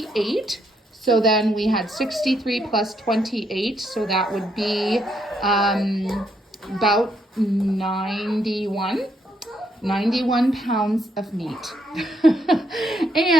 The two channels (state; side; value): normal; both; correlation 0.74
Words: So then we had 63 plus 28. So that would be about 91 pounds of meat.